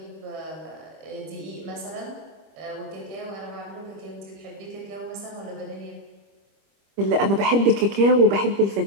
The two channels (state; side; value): late; left; 25 ms